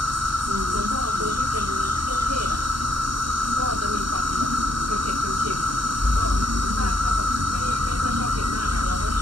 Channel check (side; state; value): left; late; 0.72 ms